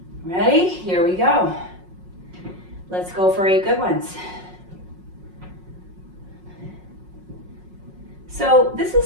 Ready? Here we go. Let's go for 8 good ones. So this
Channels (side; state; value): left; late; 5.5 ms